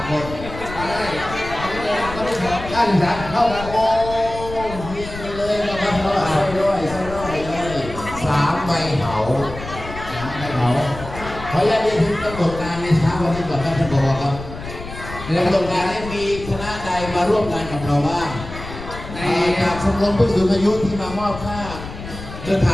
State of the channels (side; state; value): left; noise; rumble, 11 dB below the sound